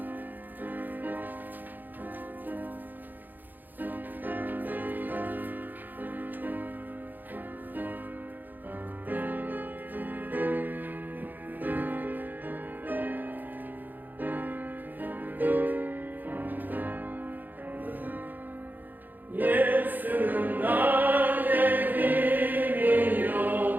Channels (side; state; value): left; late; 0.086 ms